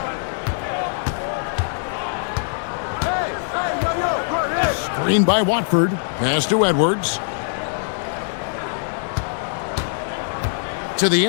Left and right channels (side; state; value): right; silent; 64 dB below the other